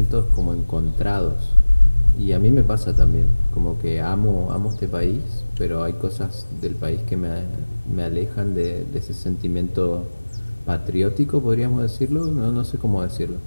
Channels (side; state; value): both; inverted; correlation -1.00